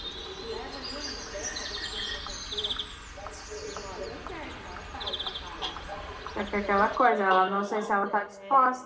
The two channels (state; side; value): identical; both; correlation 1.00